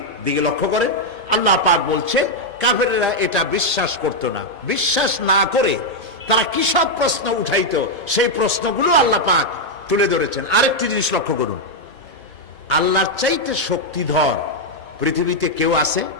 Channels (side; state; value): both; normal; correlation -0.01